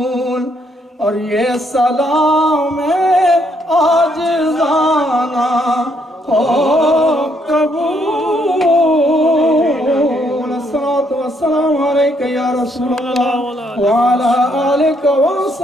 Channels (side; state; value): both; normal; correlation 0.72